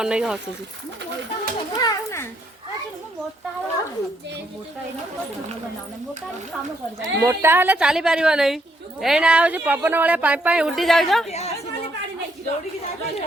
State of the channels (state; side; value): normal; both; correlation 0.73